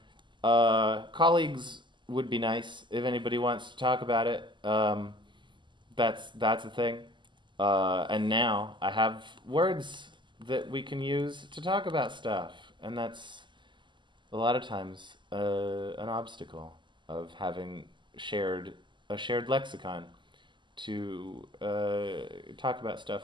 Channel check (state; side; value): late; left; 0.23 ms